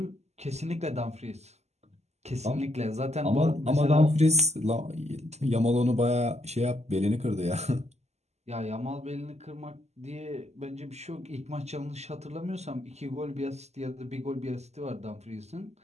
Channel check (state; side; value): late; left; 0.32 ms